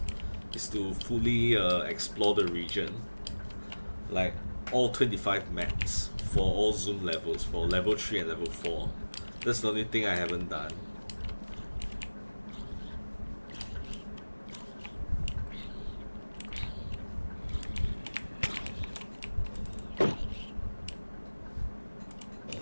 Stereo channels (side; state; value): both; inverted; correlation -1.00